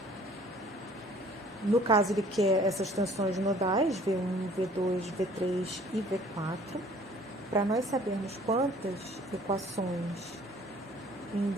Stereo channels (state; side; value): normal; both; correlation 0.54